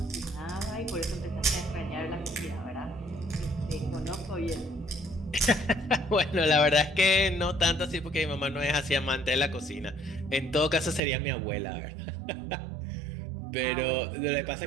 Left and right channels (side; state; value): left; drops out; at 11.0 s